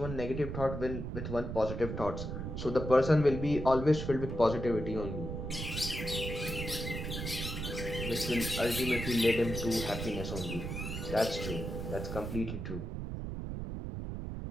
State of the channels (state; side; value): noise; right; rumble, 5 dB below the sound